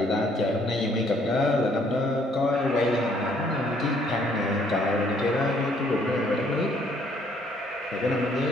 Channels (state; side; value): normal; both; correlation 0.64